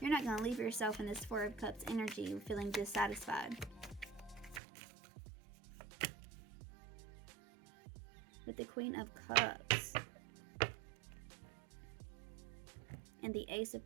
You're not going to leave yourself in this Four of Cups energy feeling dissatisfied. With the Queen of Cups and the Ace of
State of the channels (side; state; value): left; drops out; at 4.6 s